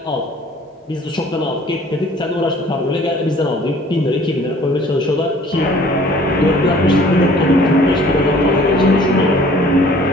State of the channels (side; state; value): both; normal; correlation 0.53